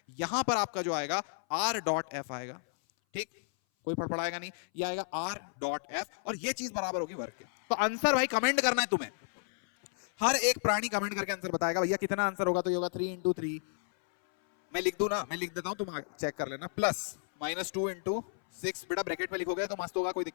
यहां पर आपका जो आएगा r डॉट f आएगा, ठीक, कोई फड़फड़ाएगा नहीं, ये आएगा r डॉट f, और ये चीज बराबर होगी वर्क के। तो आंसर भाई कमेंट करना है तुम्हें, हर एक प्राणी कमेंट करके आंसर बताएगा भैया कितना आंसर होगा, तो ये होगा 3 into 3। मैं लिख दूं ना, मैं लिख देता हूं, तुम चेक कर लेना, प्लस -2 into 6, बेटा ब्रैकेट में लिखोगे तो मस्त होगा, कोई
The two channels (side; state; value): right; silent; 56 dB below the other